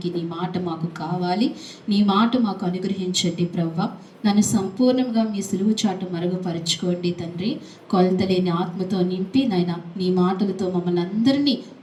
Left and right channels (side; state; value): both; identical; correlation 1.00